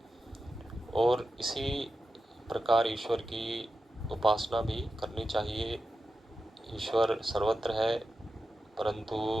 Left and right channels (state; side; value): normal; both; correlation 0.90